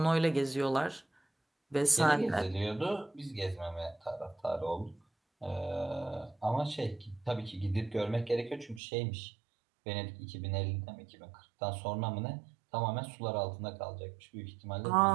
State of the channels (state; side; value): drops out; left; at 8.8 s